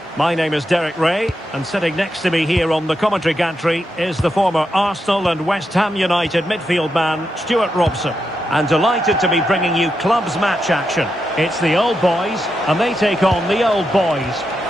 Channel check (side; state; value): both; normal; correlation 0.85